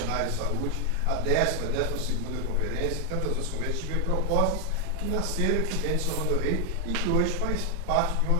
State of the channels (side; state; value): both; different; correlation 0.00